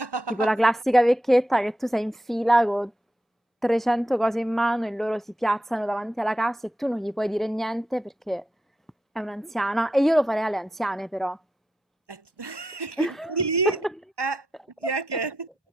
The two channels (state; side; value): normal; both; correlation 0.87